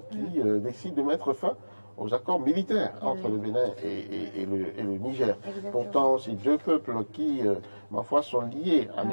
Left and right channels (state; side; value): inverted; both; correlation -1.00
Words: qui décide de mettre fin aux accords militaires entre le Bénin et le Niger. Exactement. Pourtant, c'est deux peuples qui, ma foi, sont liés à